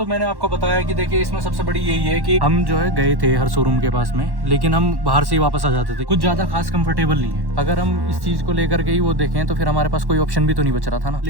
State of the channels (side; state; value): left; late; 1.1 ms